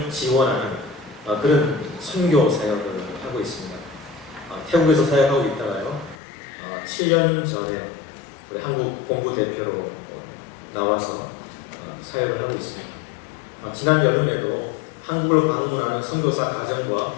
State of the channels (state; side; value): drops out; right; at 6.2 s